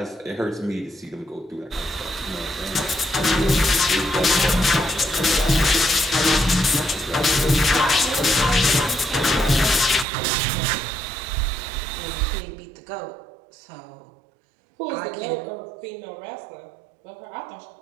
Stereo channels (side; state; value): left; drops out; at 10.1 s